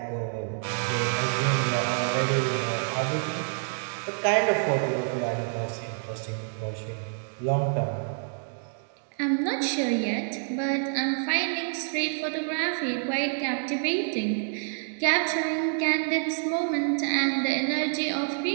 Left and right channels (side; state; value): left; silent; 60 dB below the other